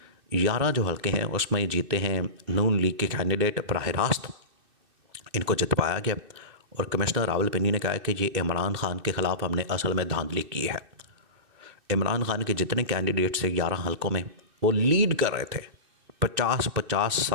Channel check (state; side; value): late; left; 2.6 ms